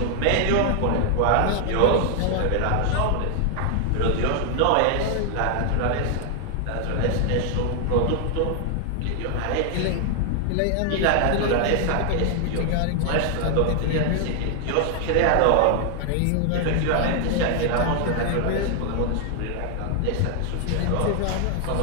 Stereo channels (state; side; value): different; both; correlation 0.00